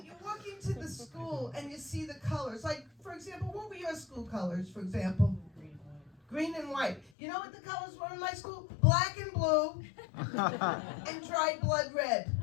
you walk into the school and you see the colors. Like, for example, what were your school colors, for example? Green and white. You know what the colors were in my school? Black and blue and dried blood red.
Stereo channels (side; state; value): right; drops out; at 7.1 s